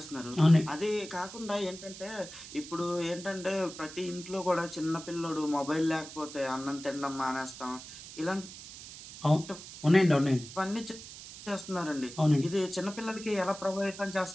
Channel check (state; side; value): noise; right; hiss, 14 dB below the sound